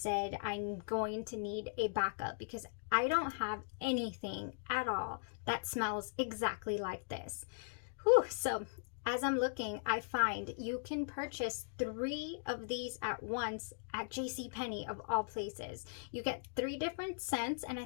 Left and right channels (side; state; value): right; silent; digital silence